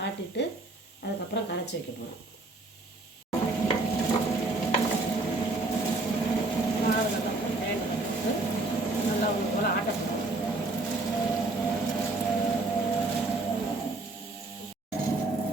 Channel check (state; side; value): quieter; left; 3.0 dB